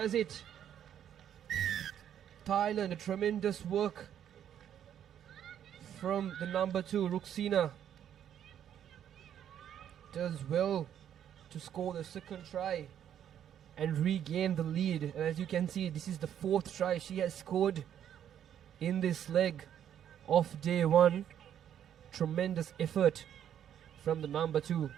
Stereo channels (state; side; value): quieter; left; 9.8 dB